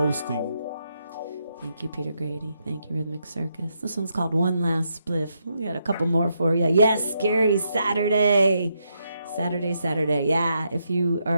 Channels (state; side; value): inverted; both; correlation -0.79